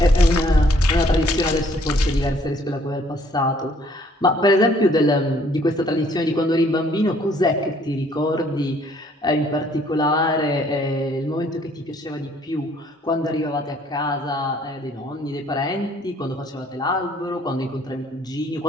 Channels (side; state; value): both; normal; correlation 0.62